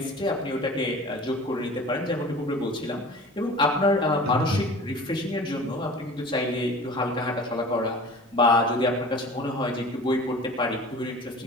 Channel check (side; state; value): both; normal; correlation 0.40